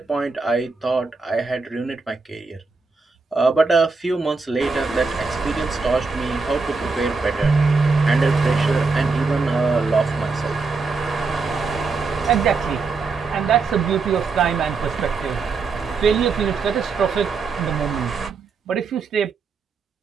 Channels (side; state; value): left; quieter; 4.4 dB